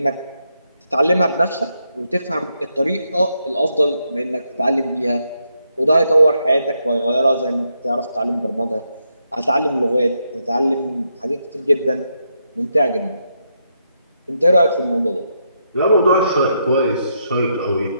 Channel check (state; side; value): inverted; both; correlation -0.80